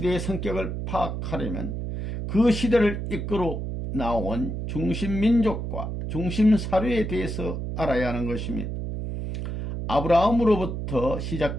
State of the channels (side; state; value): right; noise; hum, 4 dB below the sound